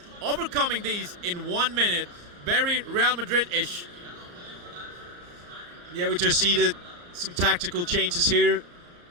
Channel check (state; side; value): late; left; 34 ms